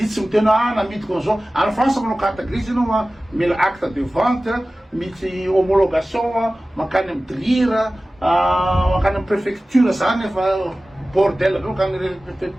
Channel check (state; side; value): normal; both; correlation 0.97